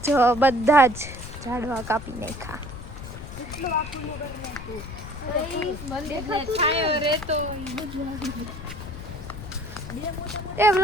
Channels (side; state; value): left; noise; rumble, 11 dB below the sound